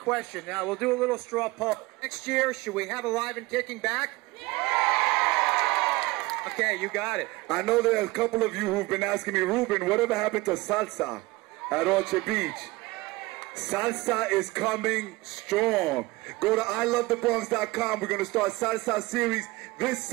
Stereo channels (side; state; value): left; quieter; 21.5 dB